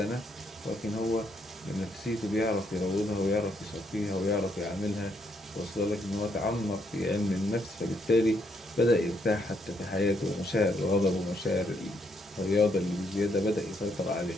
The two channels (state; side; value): normal; both; correlation 0.74